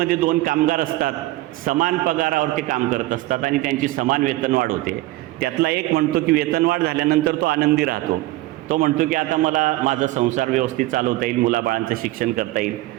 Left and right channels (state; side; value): quieter; left; 18.1 dB